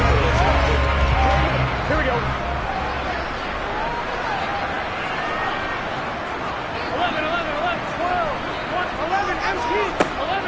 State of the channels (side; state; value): both; identical; correlation 1.00